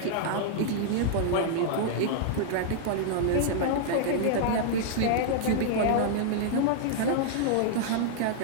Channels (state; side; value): different; both; correlation -0.01